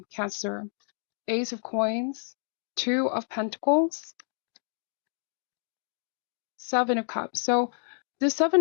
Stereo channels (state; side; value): silent; right; digital silence